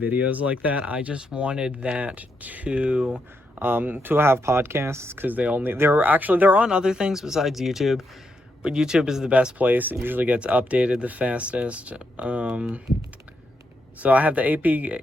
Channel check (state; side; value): normal; both; correlation 0.81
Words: like that. I just wanted that to have podcasts, because they're on other things besides YouTube, but YouTube is the best place. It usually gets updated the fastest. So I have the